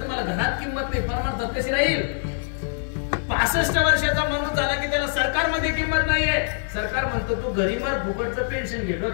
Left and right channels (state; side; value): silent; right; digital silence